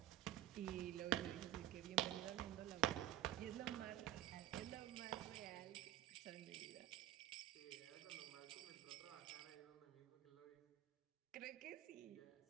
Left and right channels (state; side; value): quieter; left; 13.2 dB